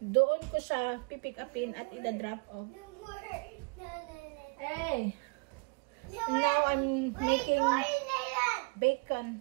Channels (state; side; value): quieter; left; 31.1 dB